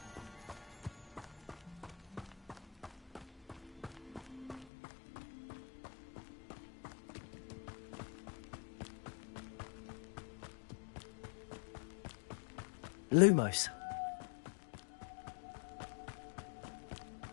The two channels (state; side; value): drops out; right; at 4.7 s